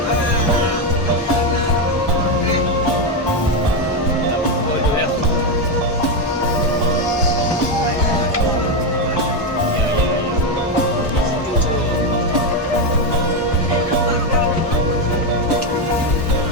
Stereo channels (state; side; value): normal; both; correlation 0.08